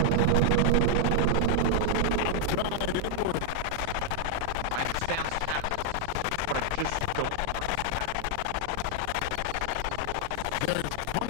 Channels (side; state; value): both; different; correlation 0.00